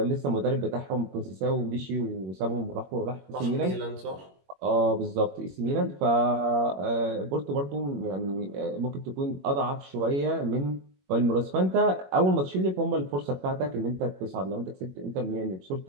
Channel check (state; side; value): late; left; 21 ms